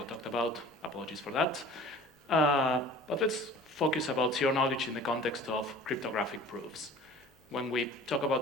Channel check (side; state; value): both; normal; correlation 0.44